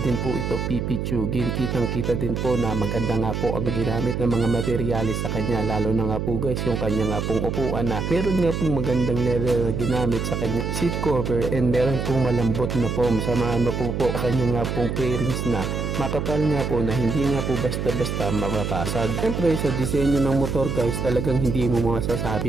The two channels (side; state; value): right; noise; hum, 2 dB below the sound